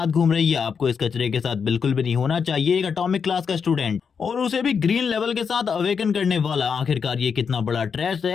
घूम रही है, आपको इस कचरे के साथ बिल्कुल भी नहीं होना चाहिए। एक एटॉमिक क्लास का स्टूडेंट और उसे भी ग्रीन लेवल के साथ अवेकन करने वाला, आखिरकार ये कितना बड़ा ट्रैश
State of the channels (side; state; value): right; quieter; 6.3 dB